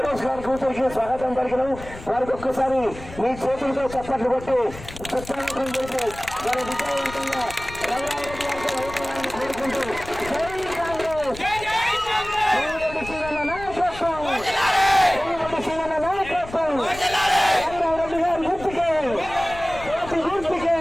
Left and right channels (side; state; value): left; noise; rumble, 15 dB below the sound